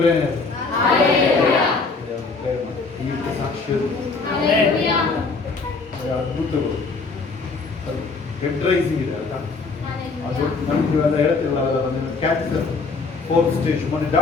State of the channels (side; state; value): right; quieter; 4.2 dB